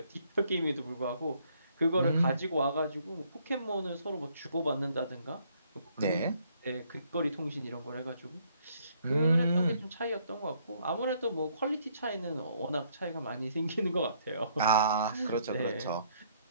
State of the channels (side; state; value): both; inverted; correlation -0.68